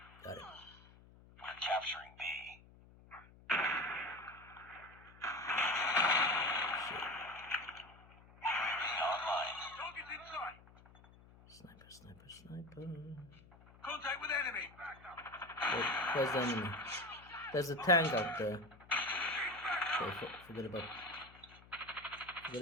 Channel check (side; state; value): left; noise; hum, 23 dB below the sound